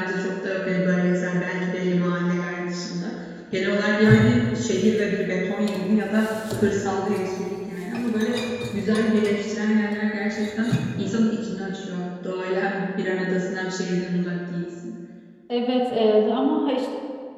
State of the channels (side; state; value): both; identical; correlation 1.00